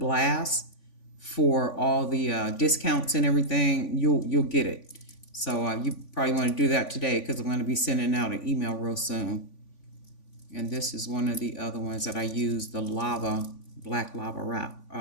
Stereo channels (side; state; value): right; late; 3.5 ms